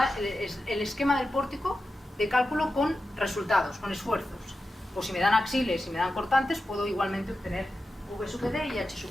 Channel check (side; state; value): both; normal; correlation 0.91